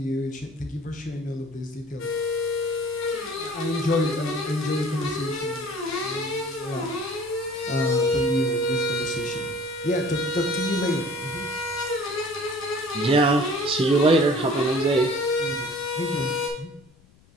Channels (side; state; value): left; noise; rumble, 29 dB below the sound